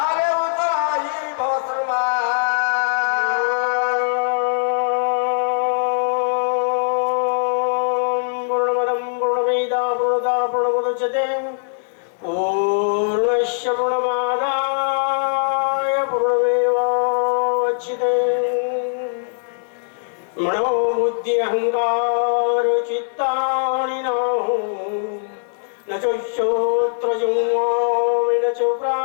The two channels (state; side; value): silent; right; digital silence